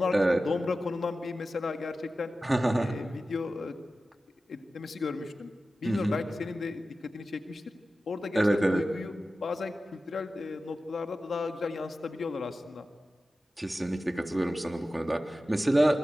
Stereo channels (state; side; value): normal; both; correlation 0.94